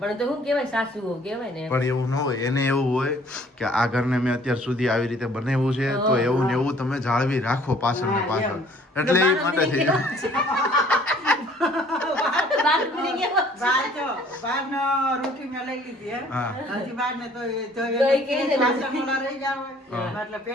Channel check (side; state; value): both; normal; correlation 0.57